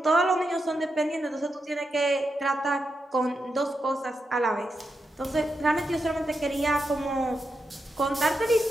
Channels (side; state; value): both; normal; correlation 0.86